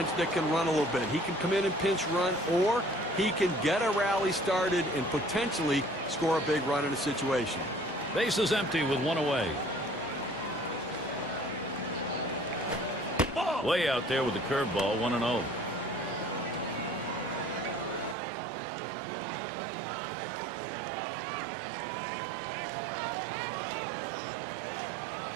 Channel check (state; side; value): drops out; left; at 18.2 s